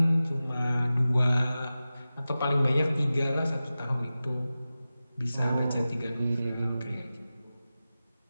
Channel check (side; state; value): both; inverted; correlation -0.95